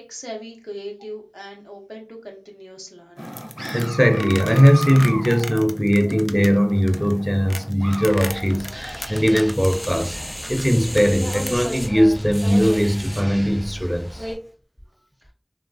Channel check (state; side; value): identical; both; correlation 1.00